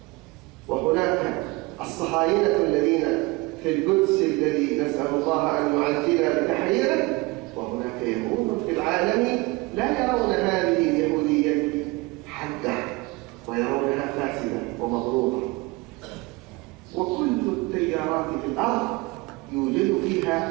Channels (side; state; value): left; quieter; 24.0 dB